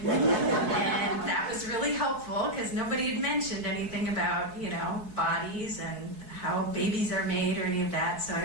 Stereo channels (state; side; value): late; left; 4.7 ms